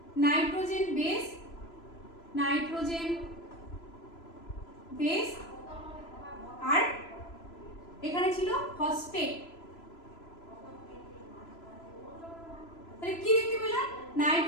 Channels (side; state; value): right; late; 3.0 ms